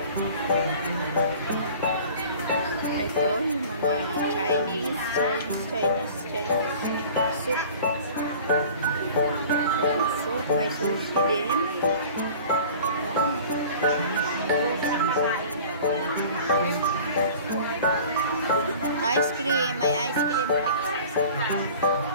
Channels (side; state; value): both; inverted; correlation -0.44